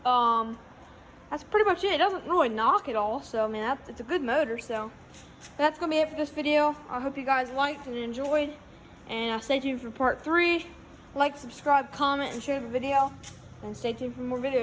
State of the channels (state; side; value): identical; both; correlation 1.00